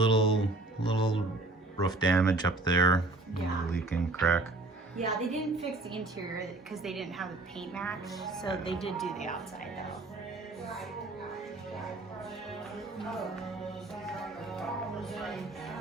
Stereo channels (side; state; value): left; quieter; 3.2 dB